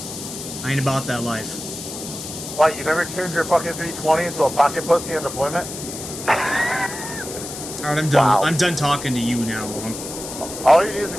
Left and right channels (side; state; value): left; noise; hiss, 9 dB below the sound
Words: I ain't about that life. What, you never turned your fucking 320 into a pocket pussy in deployment? Alright, I'm done. Wow. I'm done talking to you now. All you need is a